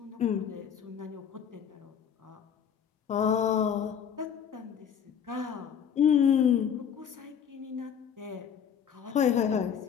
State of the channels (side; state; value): right; quieter; 8.1 dB